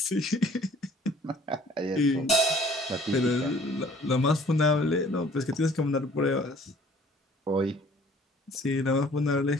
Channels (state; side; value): normal; both; correlation 0.54